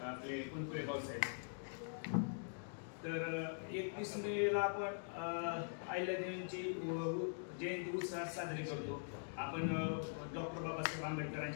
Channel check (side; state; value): right; silent; digital silence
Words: आपले कुंकुळे भाऊसाहेब. तर 31 मेला आपण अहिल्यादेवींची जयंती उत्साहात साजरी करतो. आपण डॉक्टर बाबासाहेब